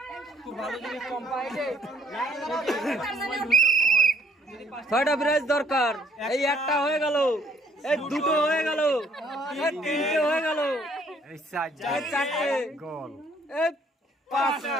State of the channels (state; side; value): normal; both; correlation 0.64